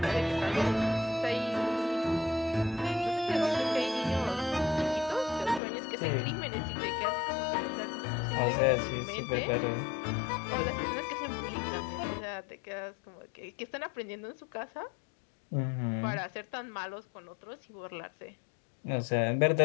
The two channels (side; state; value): right; drops out; at 5.6 s